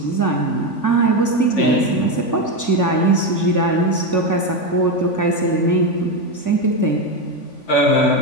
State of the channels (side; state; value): right; late; 3.5 ms